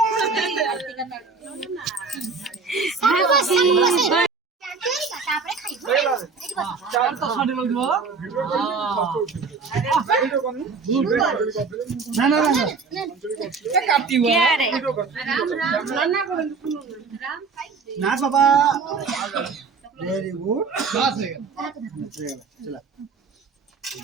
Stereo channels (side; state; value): left; quieter; 4.8 dB